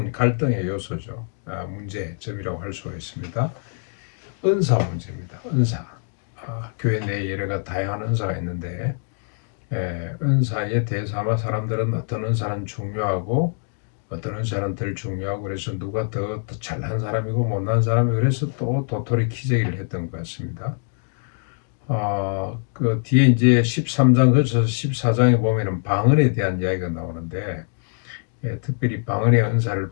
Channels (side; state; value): right; silent; 60 dB below the other